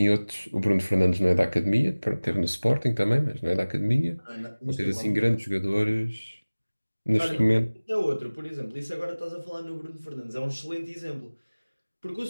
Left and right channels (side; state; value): both; inverted; correlation -1.00